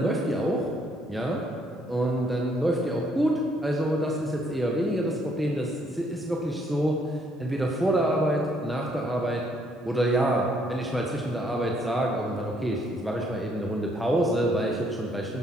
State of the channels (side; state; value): both; normal; correlation 0.68